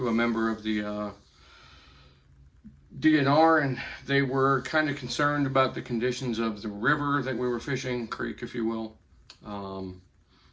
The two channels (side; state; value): both; identical; correlation 1.00